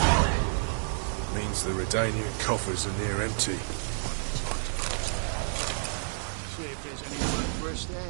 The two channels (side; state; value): left; silent; digital silence